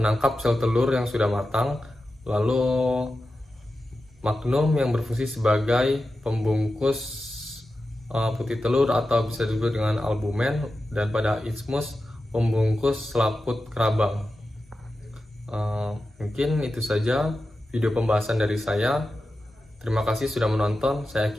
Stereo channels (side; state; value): both; normal; correlation 0.92